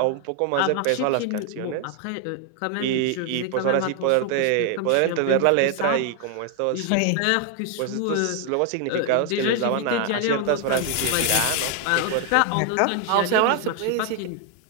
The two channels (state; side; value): different; both; correlation 0.01